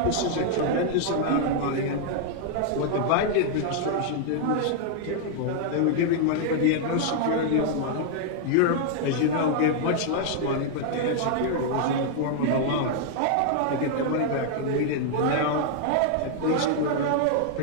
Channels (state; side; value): different; both; correlation 0.00